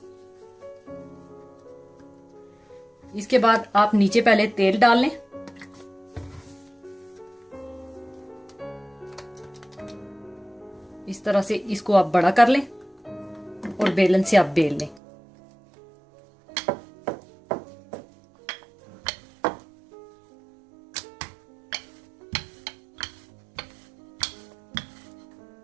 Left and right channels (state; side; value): drops out; left; at 15.0 s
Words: इसके बाद आप नीचे पहले तेल डाल लें। इस तरह से इसको आप बड़ा कर लें और बेलन से आप बेल लें।